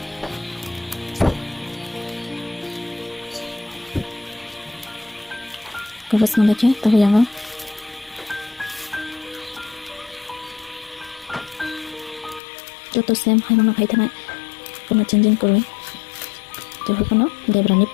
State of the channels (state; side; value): drops out; right; at 12.4 s